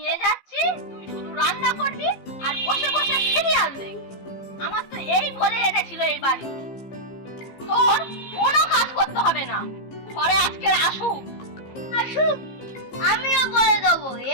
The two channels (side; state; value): right; late; 15 ms